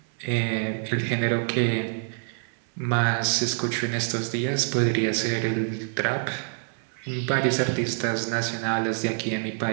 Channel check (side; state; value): left; silent; 61 dB below the other